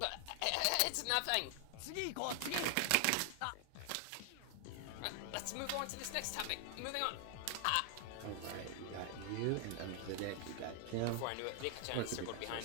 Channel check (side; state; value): both; different; correlation 0.00